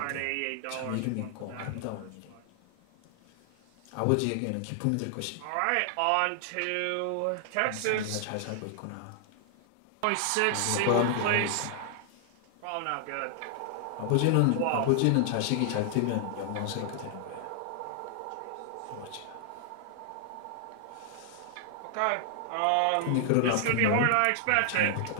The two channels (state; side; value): different; both; correlation -0.01